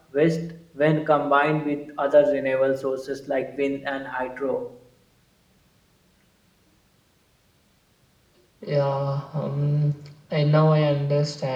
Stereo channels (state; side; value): identical; both; correlation 1.00